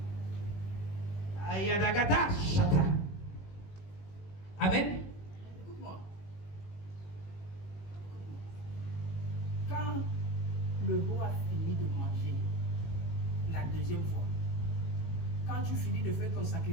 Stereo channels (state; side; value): late; right; 18 ms